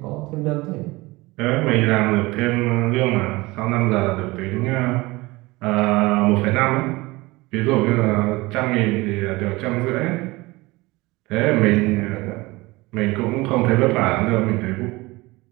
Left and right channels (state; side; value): quieter; left; 21.8 dB